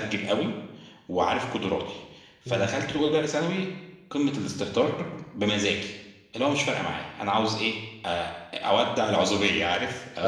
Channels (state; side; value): identical; both; correlation 1.00